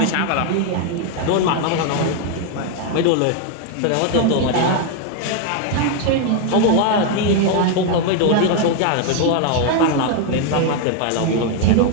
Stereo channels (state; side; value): different; both; correlation 0.01